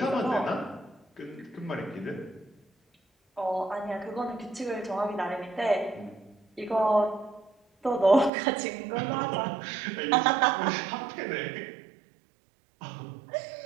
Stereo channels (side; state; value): left; drops out; at 8.3 s